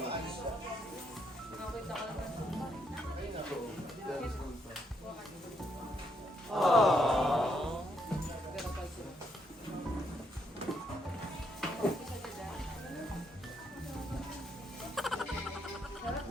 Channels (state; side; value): normal; both; correlation 0.75